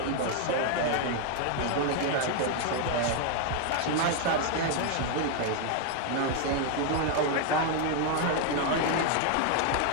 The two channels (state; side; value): different; both; correlation 0.00